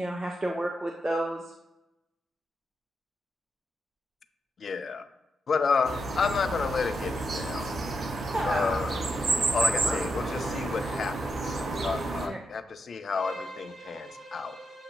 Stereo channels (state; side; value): normal; both; correlation 0.83